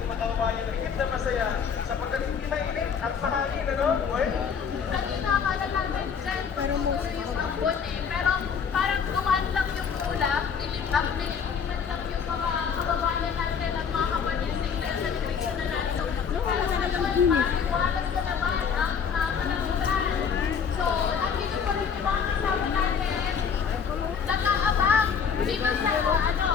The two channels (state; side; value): quieter; right; 6.8 dB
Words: kababayan na higit na masaya sapagkat hindi mainit at mahangin, ano? Well, Kanina akala namin dyan, siguro yung ambon eh. Pero parang dumaan lang yung ulap, nilipat lang yung mga kababayan natin at mga kapatid sa celebration na natin. So, talagang maliwalas na naman ang panangutan. So, nandito pa rin yung mga kasama natin. Nag-aabang. Dito sa